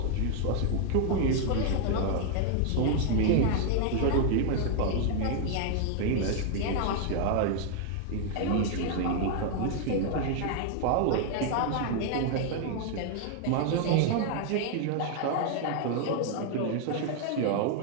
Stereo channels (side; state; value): both; different; correlation 0.00